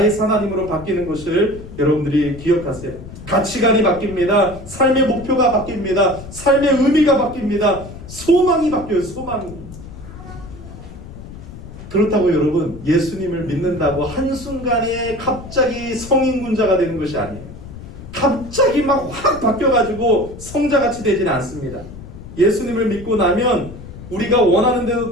하나님으로 바뀌는 것을 여러분들이 기억하세요. 가치관이 바뀝니다. 삶의 목표가 바뀝니다. 삶의 의미가 바뀝니다. 소망이 바뀌어요. 소망이. 그렇다고 여러분 예수님을 믿는다고 한순간에 갑자기 성인군자가 되는 것이 아니에요. 갑자기 막 확 바뀌어가지고 성자같이 되지는 않습니다. 예수님을 믿고 나면 우리가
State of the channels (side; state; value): left; noise; rumble, 14 dB below the sound